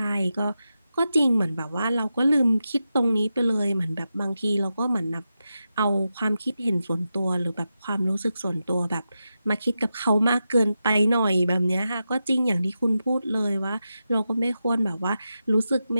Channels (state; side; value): inverted; both; correlation -0.90